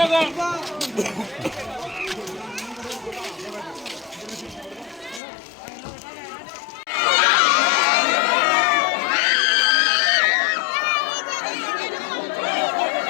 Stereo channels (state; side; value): drops out; right; at 5.2 s